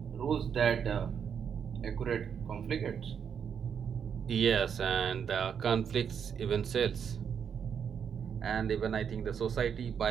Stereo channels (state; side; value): quieter; left; 7.5 dB